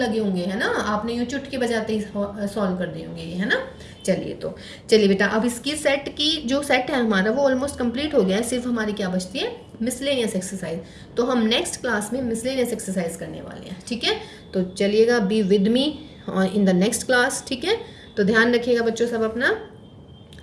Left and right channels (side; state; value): both; identical; correlation 1.00